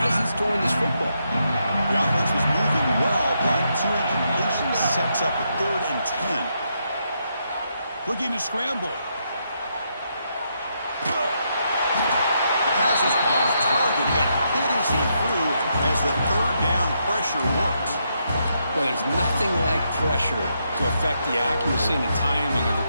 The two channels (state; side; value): inverted; both; correlation -0.79